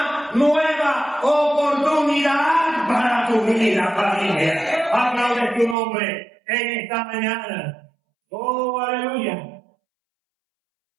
nueva oportunidad para tu vida, familia. Aplaude tu nombre en esta mañana. Oh, aleluya.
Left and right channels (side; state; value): left; drops out; at 5.8 s